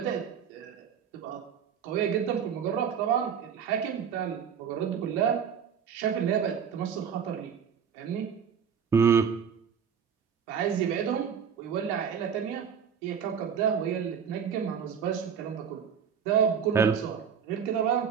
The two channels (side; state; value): left; quieter; 7.5 dB